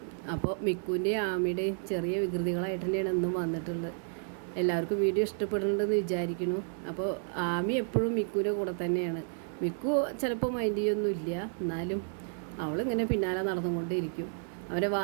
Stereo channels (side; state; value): left; silent; digital silence